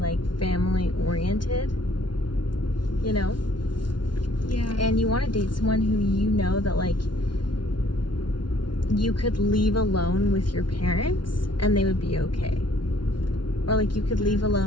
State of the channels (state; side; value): late; right; 0.71 ms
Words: family oriented, you know? Yeah. And you want to date someone who you know that like you could leave alone with your parents and they would be okay. Or like you could leave